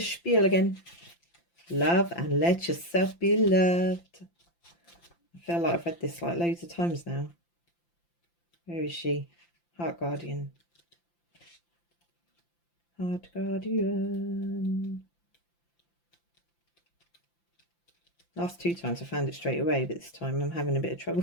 again. Love and let yourself be loved. I feel like I've read this like loads of times now. Where is she? Heart Guardian. Heart Guardian. Last two times I found it straight away, but this time I'm having a bit of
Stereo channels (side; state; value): right; late; 5.8 ms